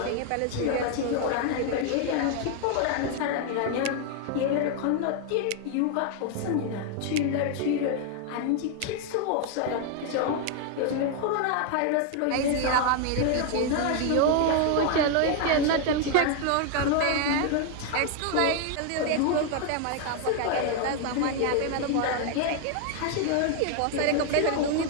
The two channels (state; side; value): different; both; correlation 0.00